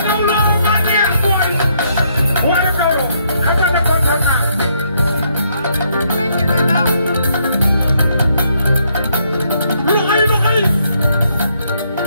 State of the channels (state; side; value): inverted; both; correlation -0.72